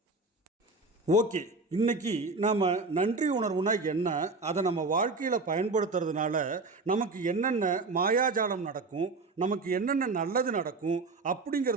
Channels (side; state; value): left; quieter; 3.6 dB